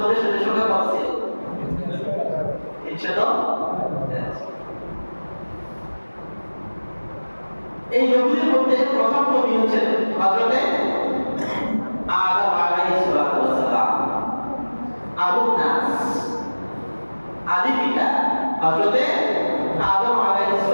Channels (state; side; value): inverted; both; correlation -1.00